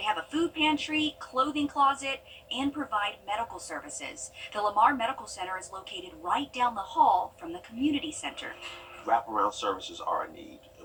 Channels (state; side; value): identical; both; correlation 1.00